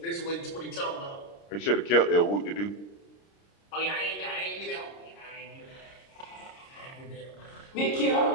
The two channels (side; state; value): right; late; 30 ms